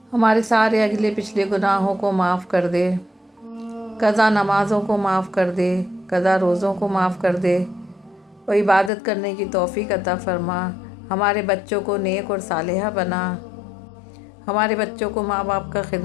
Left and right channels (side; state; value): right; drops out; at 8.9 s